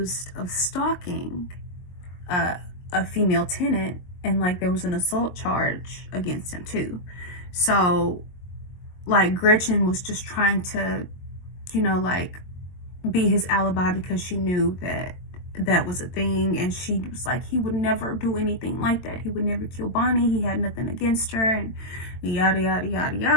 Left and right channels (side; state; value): right; late; 22 ms